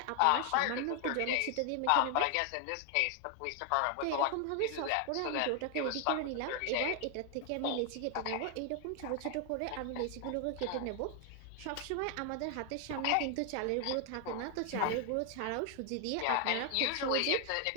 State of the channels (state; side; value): different; both; correlation 0.00